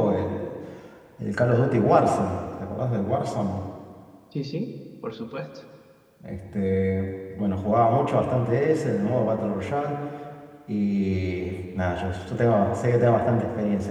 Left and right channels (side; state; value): both; identical; correlation 1.00